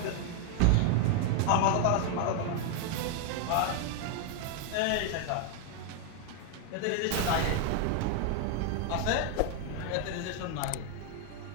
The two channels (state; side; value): different; both; correlation 0.01